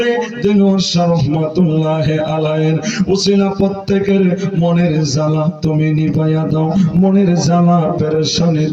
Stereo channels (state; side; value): identical; both; correlation 1.00